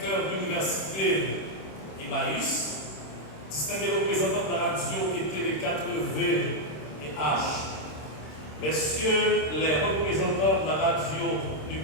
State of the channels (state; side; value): late; right; 26 ms